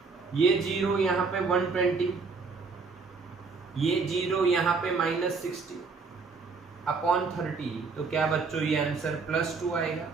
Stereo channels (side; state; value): left; quieter; 4.6 dB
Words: ये 0 यहाँ पे 120, ये 0 यहाँ पे -60 अपॉन 30, तो क्या बच्चों ये आंसर +2 आएगा?